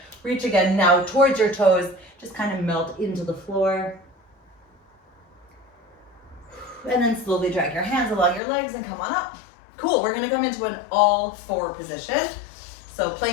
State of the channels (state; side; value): drops out; right; at 8.4 s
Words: Reach again now towards your toes. Just kind of melt into the floor. And then slowly drag your hands along your legs and come on up. Cool, we're gonna come into an all four position. So